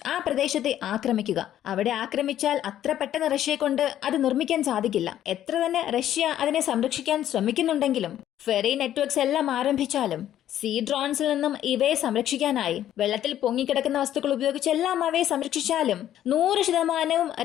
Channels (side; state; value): right; quieter; 11.7 dB